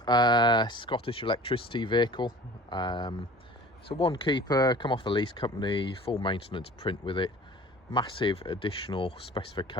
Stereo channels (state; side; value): normal; both; correlation 0.44